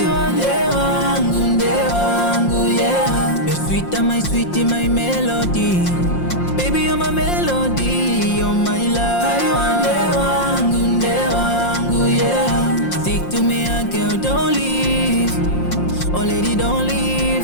Ndewangu, Ndewangu, yeah. You're sweeter, my sweetie, my melody. Baby you're my melody, you're my love. Ndewangu, Ndewangu, yeah. Stick to me, girl, don't leave. Oh lady, don't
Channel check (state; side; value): late; right; 5.7 ms